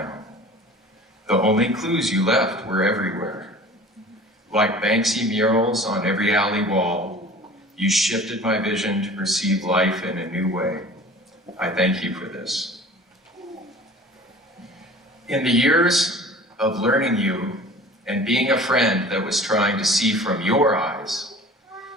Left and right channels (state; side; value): normal; both; correlation 0.43